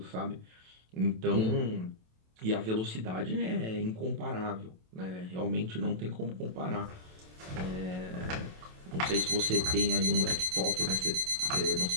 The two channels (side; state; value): left; late; 27 ms